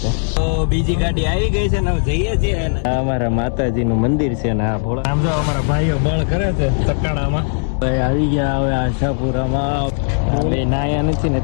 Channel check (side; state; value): right; silent; digital silence